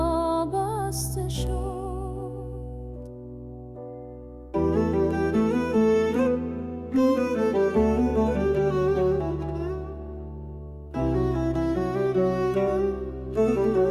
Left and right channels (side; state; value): both; identical; correlation 1.00